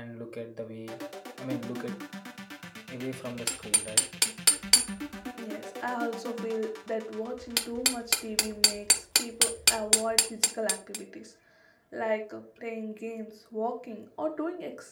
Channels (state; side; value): identical; both; correlation 1.00